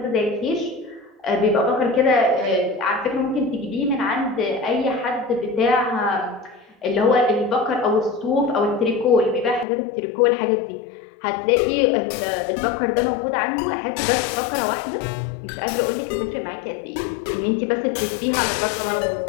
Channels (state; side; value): drops out; right; at 9.7 s